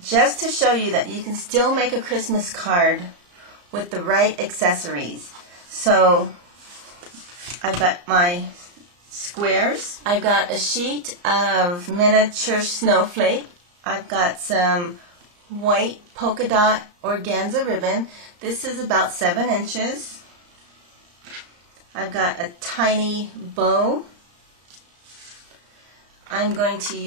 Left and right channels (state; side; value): late; left; 34 ms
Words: to show you that you can still make a Christmas card with the right accessories. So I've got my squares, I've got a sheet of miniature snowflake, I've got some white polka dot organza ribbon. This is about 7 inches. I've got a tiny bow. I'm going to